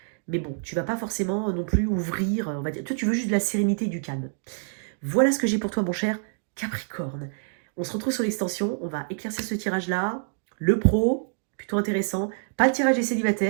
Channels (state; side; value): silent; left; digital silence